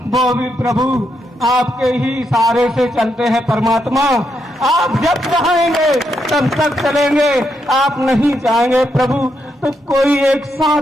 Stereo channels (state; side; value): normal; both; correlation 0.80